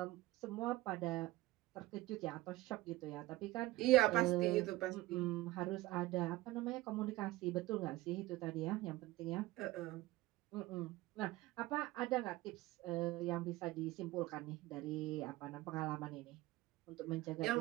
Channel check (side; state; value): left; quieter; 18.0 dB